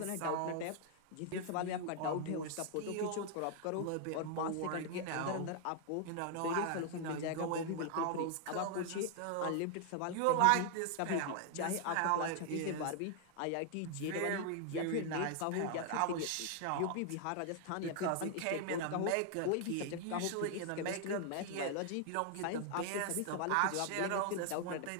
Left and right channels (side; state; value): both; different; correlation 0.00